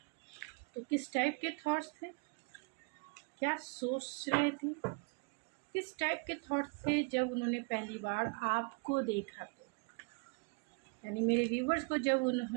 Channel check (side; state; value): left; quieter; 33.3 dB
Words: तो किस टाइप के थॉट्स थे, क्या सोच रहे थे, किस टाइप के थॉट्स थे जब उन्होंने पहली बार आपको देखा। तो यानी मेरे व्यूवर्स को जब